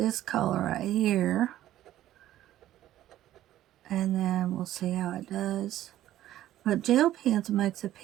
color right here, and then we'll see how it does. But gel pens makes a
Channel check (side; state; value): left; quieter; 13.3 dB